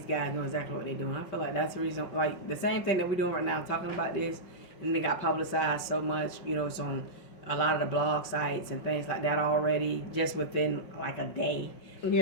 guys know exactly what they're doing. I feel like that's the reason. Like the same thing that we're doing right now, talking about this, and they got publicized so much. You know, it's on a lot of the blog sites and things like that already, just within like a day.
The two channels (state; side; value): late; right; 5.5 ms